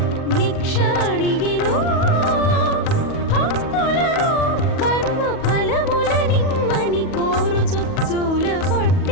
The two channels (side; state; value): right; late; 37 ms